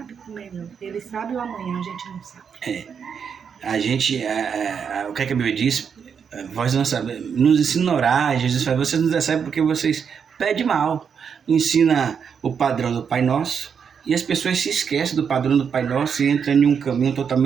o melhor. Ele sabe o amanhã, a gente não sabe. A gente, o que a Bíblia diz? Vós não sabemos, nos ensina a orar. Jesus fala: vocês não recebem porque vocês pedem mal. Ensina o padrão do Pai Nosso e as pessoas se esquecem do padrão do Pai Nosso e entram em um caminho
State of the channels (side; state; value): left; quieter; 6.9 dB